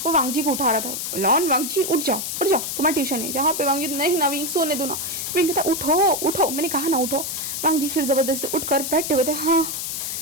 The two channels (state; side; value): noise; left; hiss, 4 dB below the sound